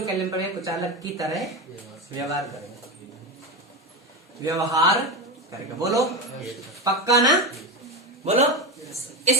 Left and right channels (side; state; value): both; normal; correlation 0.17